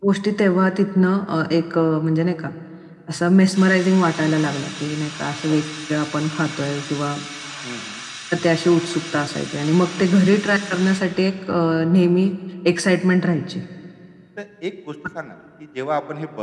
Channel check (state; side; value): identical; both; correlation 1.00